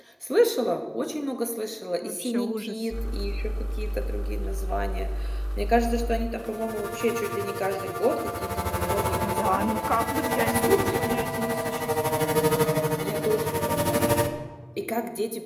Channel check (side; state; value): both; identical; correlation 1.00